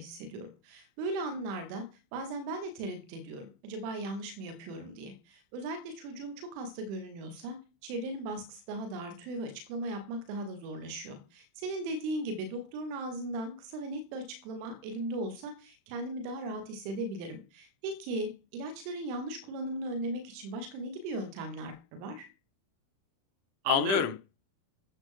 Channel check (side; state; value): left; late; 36 ms